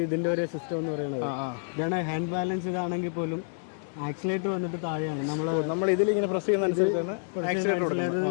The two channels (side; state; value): right; silent; digital silence